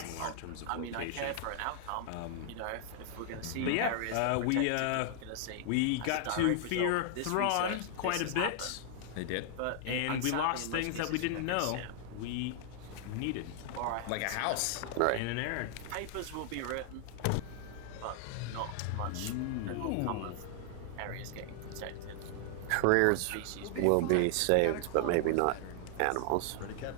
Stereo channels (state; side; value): different; both; correlation 0.00